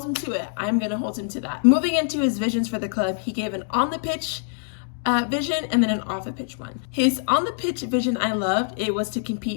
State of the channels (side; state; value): right; silent; digital silence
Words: him to it. I'm gonna hold him to that. Moving into his visions for the club, he gave an on the pitch vision and then an off the pitch one. His on the pitch vision I loved. It was to